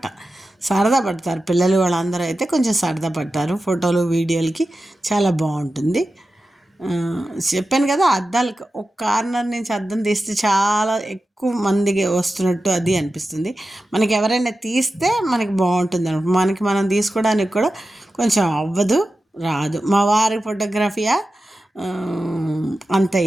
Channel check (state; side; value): normal; both; correlation 0.93